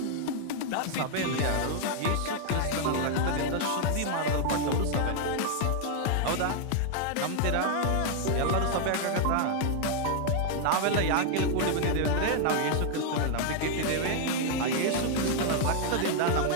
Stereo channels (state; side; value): different; both; correlation 0.00